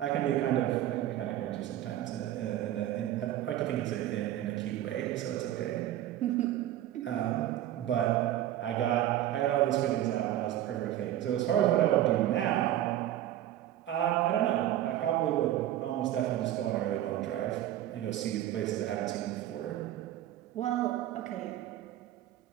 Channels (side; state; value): left; quieter; 12.8 dB